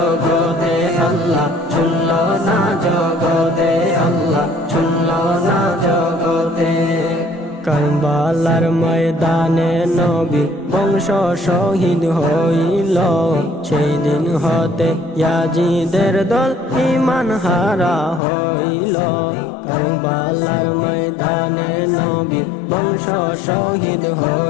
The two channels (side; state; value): right; drops out; at 18.2 s